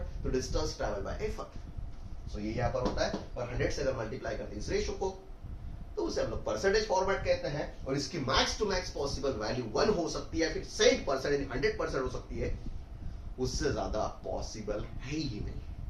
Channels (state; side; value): identical; both; correlation 1.00